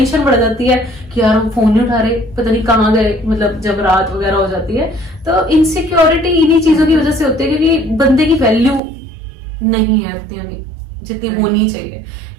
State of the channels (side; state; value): left; drops out; at 8.8 s